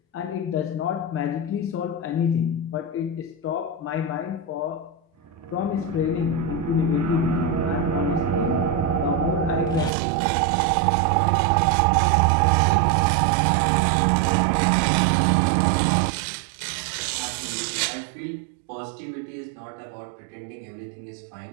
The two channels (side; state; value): left; drops out; at 9.9 s